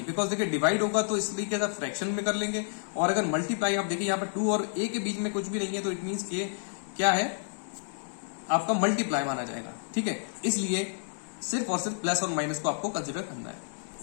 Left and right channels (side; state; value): right; silent; digital silence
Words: बिकॉज देखिए डिवाइड होगा तो इस तरीके से फ्रैक्शन में कर लेंगे, और अगर मल्टीप्लाई आप देखिए यहाँ पर 2 और a के बीच में कुछ भी नहीं है तो इट मीन्स के क्या है, आपका मल्टीप्लाई माना जाएगा, ठीक है। इसलिए सिर्फ और सिर्फ प्लस और माइनस को आपको कंसिडर करना है,